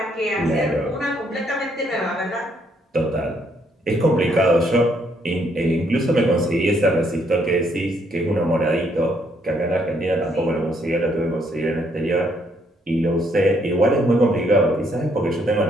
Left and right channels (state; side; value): normal; both; correlation 0.71